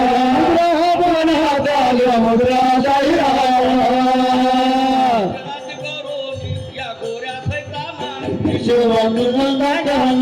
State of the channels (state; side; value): identical; both; correlation 1.00